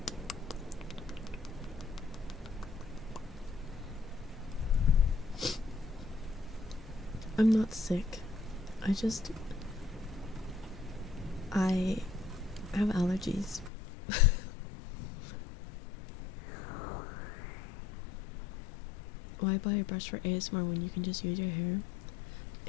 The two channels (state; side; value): drops out; right; at 13.7 s